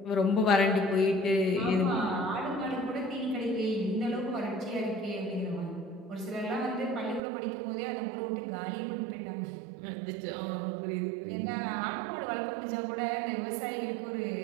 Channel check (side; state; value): left; drops out; at 7.2 s